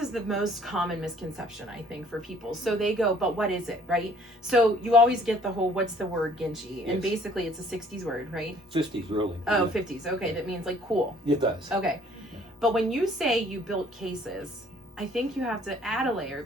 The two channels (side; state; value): both; normal; correlation 0.58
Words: the most common misconception, I think, for people. So they go, but what is it, right? So you always get the whole, what's the word Ginchy? And basically it's a 60s word, right? 50s, really. Oh, yeah. 50s. Okay, that means like cool. It does. Okay. But when you say you built cases, I think you have to add a layer,